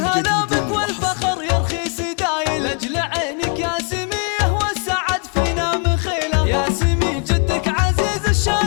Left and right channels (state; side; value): quieter; right; 36.4 dB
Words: بك والفخر يرخي سدايل لاجل عينك يا سميه والسعد فينا مخيله يا سمي جدك عزيز